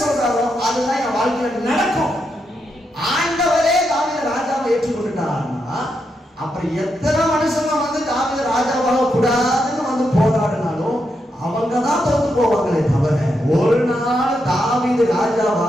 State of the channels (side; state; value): both; normal; correlation 0.83